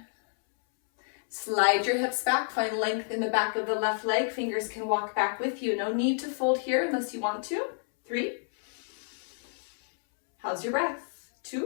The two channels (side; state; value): right; silent; 58 dB below the other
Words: Slide your hips back, find length in the back of the left leg. Fingers can walk back with you. No need to fold here unless you want to. 3. How's your breath?